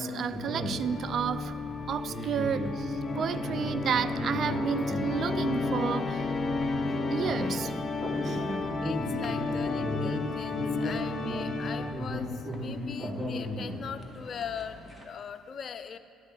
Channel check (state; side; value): normal; both; correlation 0.72